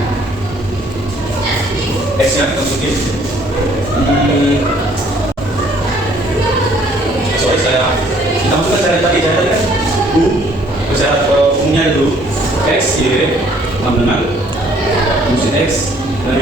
X nya kita masukin sorry kita masukkan cara tadi kan cara umumnya dulu X, Y sama dengan fungsi X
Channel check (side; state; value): both; normal; correlation 0.61